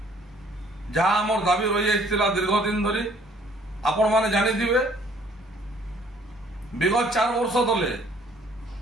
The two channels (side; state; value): both; normal; correlation 0.59